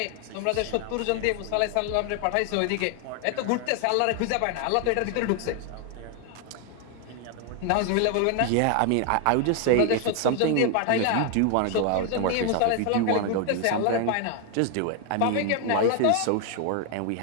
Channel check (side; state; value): both; different; correlation 0.00